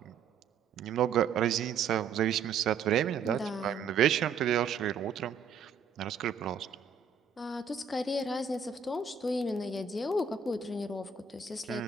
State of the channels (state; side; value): quieter; left; 6.0 dB